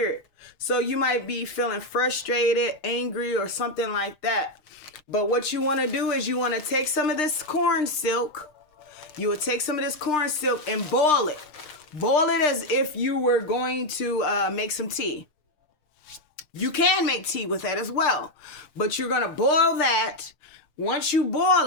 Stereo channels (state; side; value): late; right; 6.6 ms